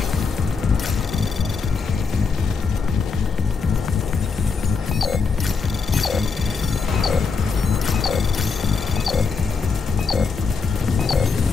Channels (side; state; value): right; quieter; 4.9 dB